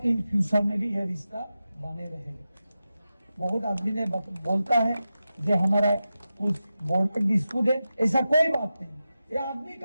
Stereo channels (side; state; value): both; inverted; correlation -0.92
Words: फ्यूचर में भी यह रिश्ता बने रहेगा। बहुत आदमी ने बोलता है जो हमारा कुछ बोर्ड पर डिस्प्यूट है, ऐसा कोई बात नहीं, ये आदमी